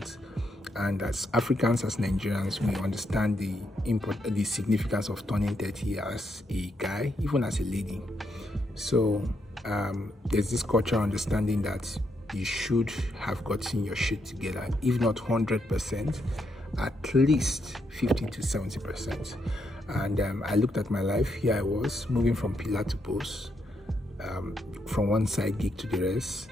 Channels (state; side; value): normal; both; correlation 0.79